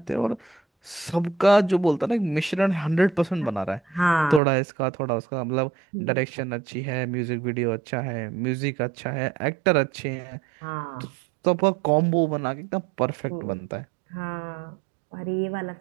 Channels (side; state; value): left; drops out; at 4.4 s